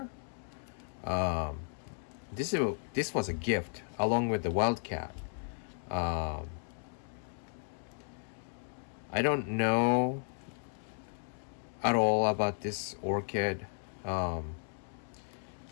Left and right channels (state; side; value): silent; right; 55 dB below the other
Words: This was a gift along with the Wildcat. I don't know at all about this orchid.